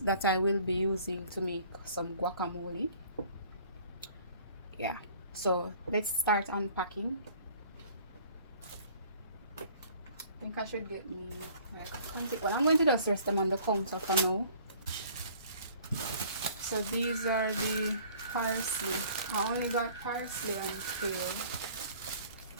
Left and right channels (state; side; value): inverted; both; correlation -0.53